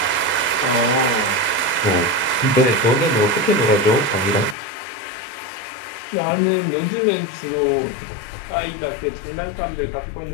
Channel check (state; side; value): drops out; right; at 4.5 s